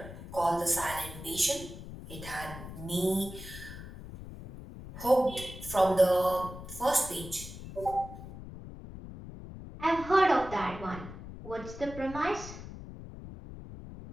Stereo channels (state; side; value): noise; left; rumble, 12 dB below the sound